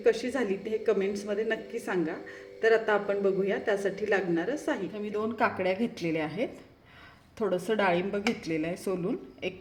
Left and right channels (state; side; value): identical; both; correlation 1.00